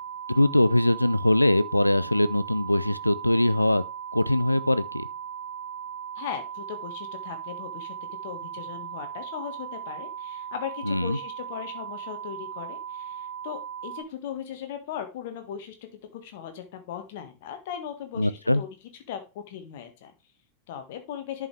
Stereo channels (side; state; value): both; inverted; correlation -0.89